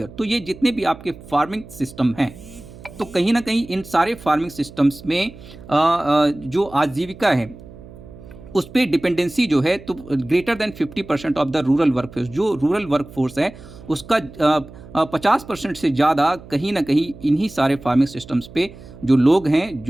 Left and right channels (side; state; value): right; noise; hum, 18 dB below the sound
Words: तो ये जितने भी आपके फार्मिंग सिस्टम हैं, तो कहीं ना कहीं इन सारे फार्मिंग सिस्टम्स में जो आजीविका है उस पर डिपेंडेंसी जो है, तो greater than 50% of the rural work force, जो रूरल वर्क फोर्स है उसका 50% से ज़्यादा कहीं ना कहीं इन्हीं सारे फार्मिंग सिस्टम्स पे जो लोग हैं,